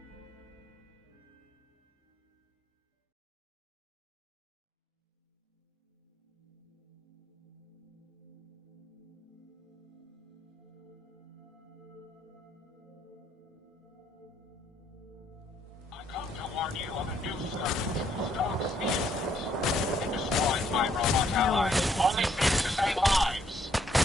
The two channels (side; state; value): both; normal; correlation 0.70